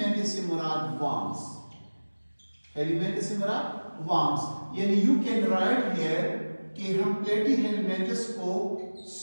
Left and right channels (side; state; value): both; inverted; correlation -1.00